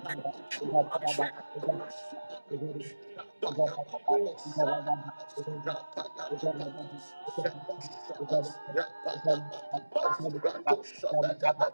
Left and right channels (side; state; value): both; inverted; correlation -1.00